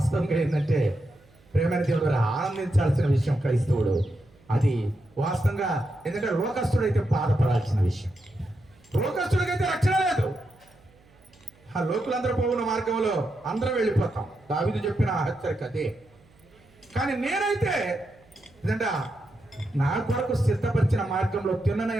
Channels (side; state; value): right; noise; hum, 30 dB below the sound